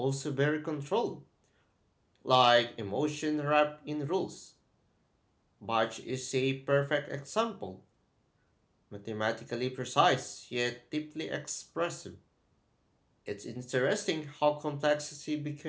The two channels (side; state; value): both; identical; correlation 1.00